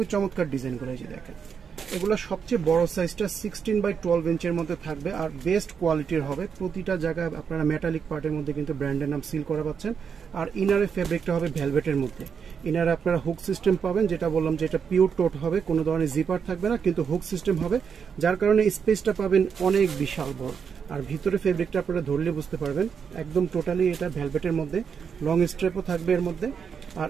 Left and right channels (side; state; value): left; quieter; 6.7 dB